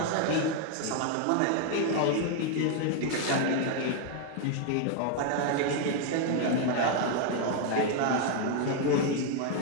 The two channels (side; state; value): both; different; correlation 0.00